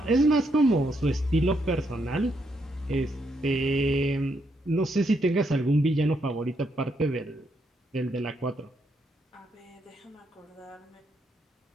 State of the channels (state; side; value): normal; both; correlation 0.77